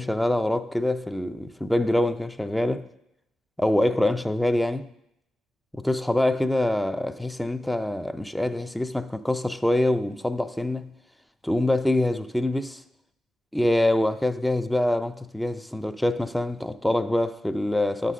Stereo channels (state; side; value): normal; both; correlation 0.95